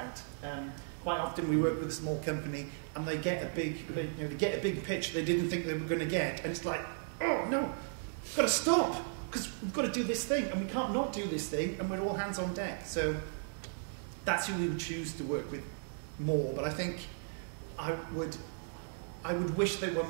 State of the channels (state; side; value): silent; left; digital silence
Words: Quite often we work with a small company and they get a big pitch they didn't think they were going to get, and it's like, oh no, we've got to stop because we've got to do this thing, and we can't not do this thing, and we're all hands on deck. So that's who we would choose to work with more. But I think I would wish there were